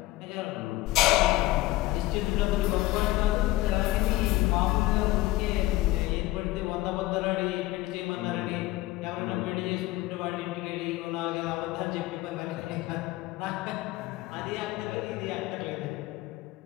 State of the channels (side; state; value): right; quieter; 17.9 dB